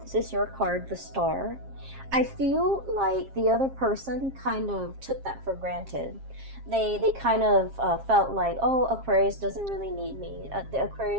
is your card, the Star. I feel like the other person kind of took that for granted. They kind of felt like, oh, Aquarius doesn't really need me. The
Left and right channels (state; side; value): late; left; 7.4 ms